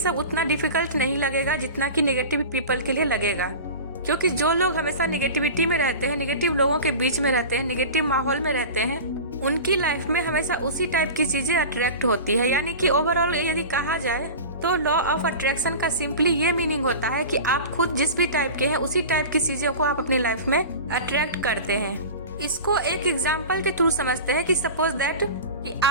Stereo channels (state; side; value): inverted; both; correlation -0.32